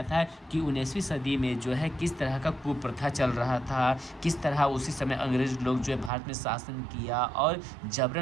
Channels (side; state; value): left; drops out; at 6.1 s